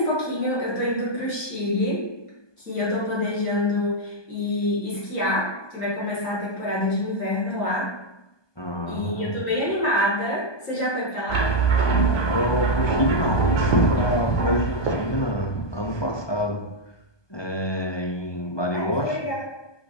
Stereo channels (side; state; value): right; late; 1.2 ms